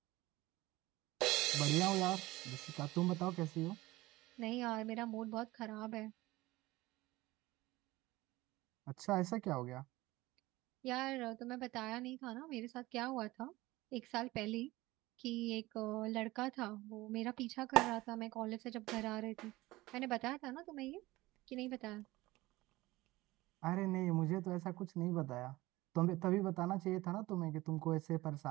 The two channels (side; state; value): left; quieter; 19.2 dB